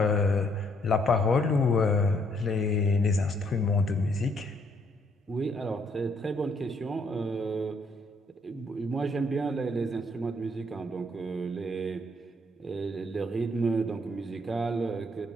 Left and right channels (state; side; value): normal; both; correlation 0.69